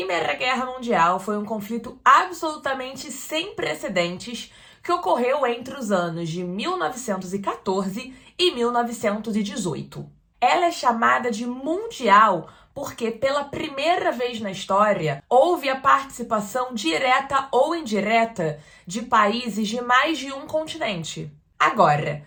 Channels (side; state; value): both; identical; correlation 1.00